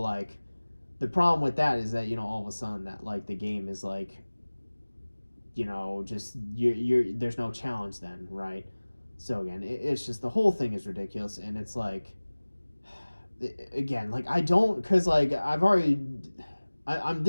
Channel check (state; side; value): inverted; both; correlation -1.00